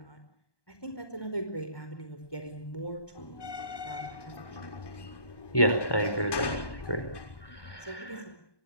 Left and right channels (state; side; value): late; right; 1.2 ms